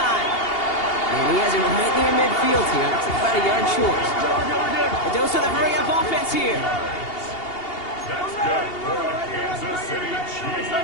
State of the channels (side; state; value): right; late; 2.8 ms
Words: And he has it right near midfield here. It's about a yard short. A dose of the hurry-up offense here. That's good for the Kansas City Chiefs.